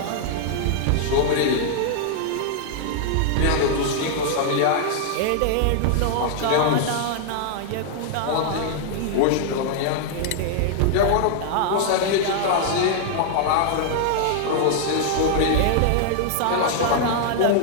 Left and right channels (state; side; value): different; both; correlation -0.01